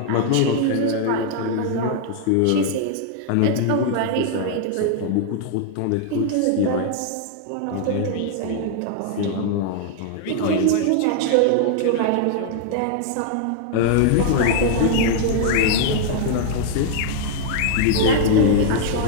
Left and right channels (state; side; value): different; both; correlation 0.00